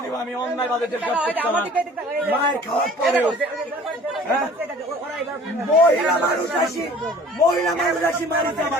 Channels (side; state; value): both; normal; correlation 0.49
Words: দিব আমি অন্যায় ভাবে মায়ের খাওয়ার পরেও মহিলা মানুষ আসি মারিতে